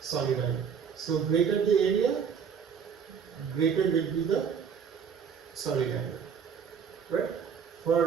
solid angle. So greater the area, greater will be the solid angle. Right?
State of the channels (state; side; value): quieter; left; 6.9 dB